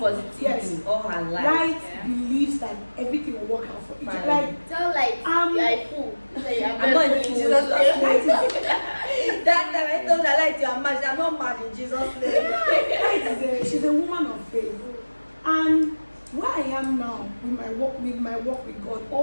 yes, all her life. Light believes that everything will work out for each other. Like, Tell Light you are a fool. I'm not in Jesus' name. That time I told her, Light, you are mad. I'm not mad in Jesus' name. Light she's a woman of faith. And where I am now with my work with God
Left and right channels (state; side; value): inverted; both; correlation -1.00